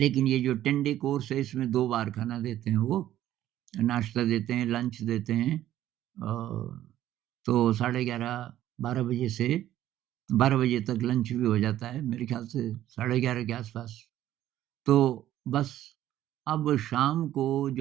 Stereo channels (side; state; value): left; quieter; 12.8 dB